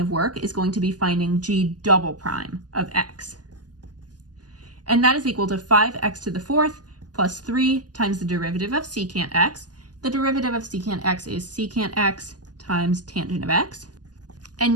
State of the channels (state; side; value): late; left; 0.69 ms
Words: work is going to be finding g double prime of x. And that is equal to 5x to the fourth plus 3 times the derivative of secant x. The derivative of secant x is secant x times tangent of x. And